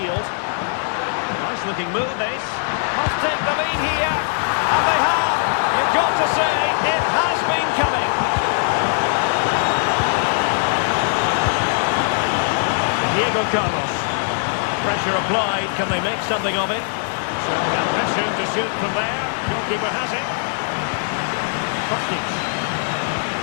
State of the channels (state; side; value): silent; right; digital silence